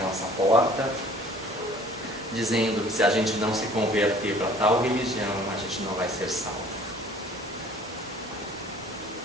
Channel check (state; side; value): normal; both; correlation 0.51